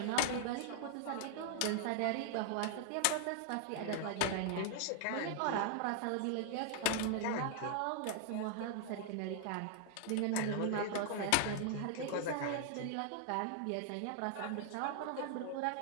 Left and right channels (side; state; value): both; different; correlation -0.01